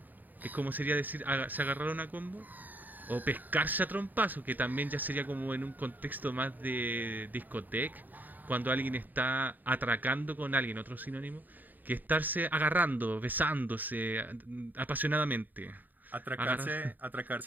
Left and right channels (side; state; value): left; late; 0.086 ms